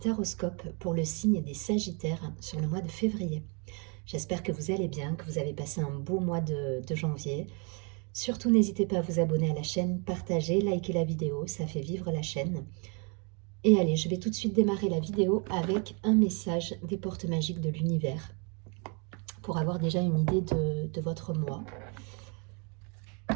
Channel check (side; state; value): left; quieter; 35.6 dB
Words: pour le signe des Sagittaires sur le mois de février. J'espère que vous allez bien, que vous avez passé un beau mois de janvier. Surtout n'hésitez pas à vous abonner à la chaîne, partager, liker la vidéo, ça fait vivre la chaîne. Et allez, je vais tout de suite démarrer la vidéo avec un message des portes magiques de l'univers pour avoir déjà une idée de votre mois.